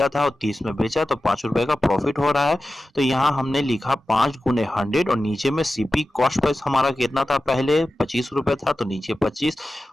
था और 30 में बेचा, तो 5 रुपए का प्रॉफिट हो रहा है। तो यहाँ हमने लिखा 5 गुने 100 और नीचे में सीपी कॉस्ट प्राइस हमारा कितना था? पहले 25 रुपए था, तो नीचे 25।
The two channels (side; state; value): both; normal; correlation 0.94